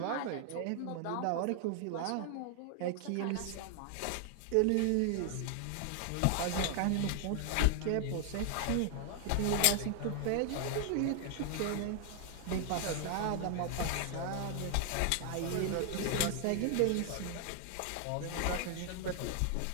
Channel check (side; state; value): both; different; correlation 0.00